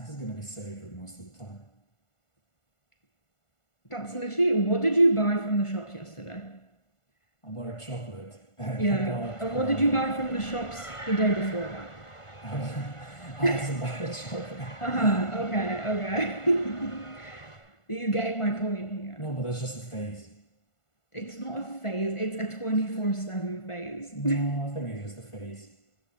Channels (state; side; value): late; right; 1.5 ms